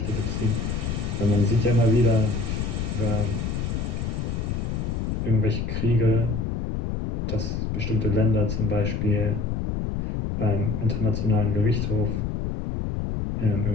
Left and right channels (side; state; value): left; noise; rumble, 2 dB below the sound